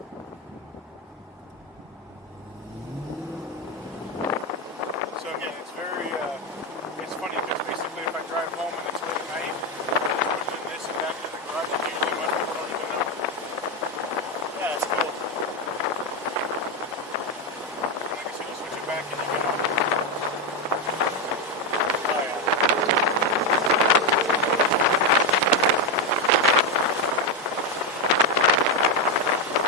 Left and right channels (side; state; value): both; normal; correlation 0.08